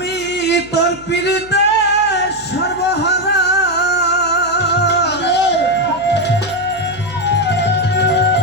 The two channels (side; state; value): left; noise; hum, 22 dB below the sound